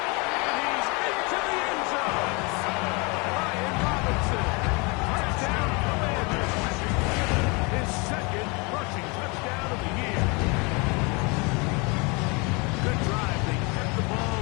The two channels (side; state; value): right; quieter; 29.2 dB